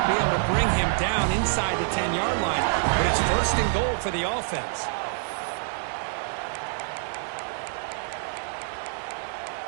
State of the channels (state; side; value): silent; left; digital silence